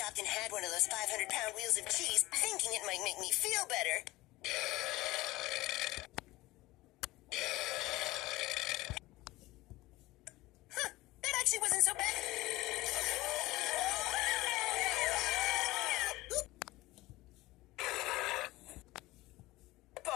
and had one of those 500-pound wheels of cheese, thinking it might make me feel better. Huh, that actually wasn't so bad.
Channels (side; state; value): right; quieter; 19.1 dB